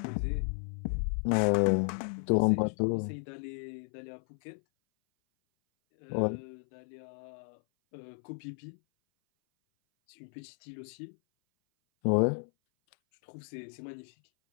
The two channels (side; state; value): right; silent; 56 dB below the other